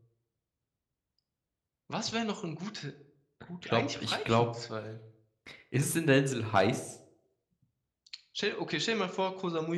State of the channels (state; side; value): identical; both; correlation 1.00